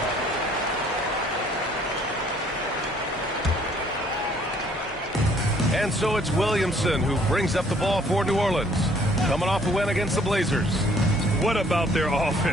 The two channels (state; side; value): normal; both; correlation 0.61